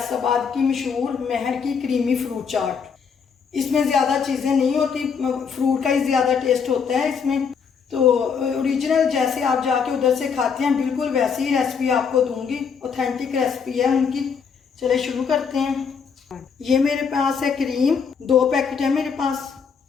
की मशहूर महर की क्रीमी फ्रूट चाट। इसमें ज़्यादा चीज़ें नहीं होती, फ्रूट का ही ज़्यादा टेस्ट होता है इसमें। तो ओरिजिनल जैसे आप जाके उधर से खाते हैं बिल्कुल वैसी ही रेसिपी आपको दूंगी। ऑथेंटिक रेसिपी है उनकी। चले शुरू करते हैं। ये मेरे पास है क्रीम, 2 पैकेट है मेरे पास।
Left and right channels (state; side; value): quieter; right; 6.3 dB